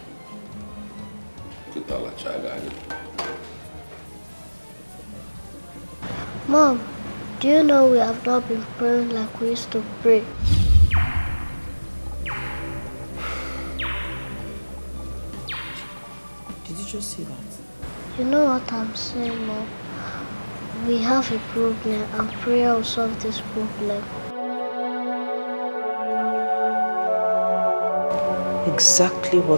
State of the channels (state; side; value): inverted; both; correlation -1.00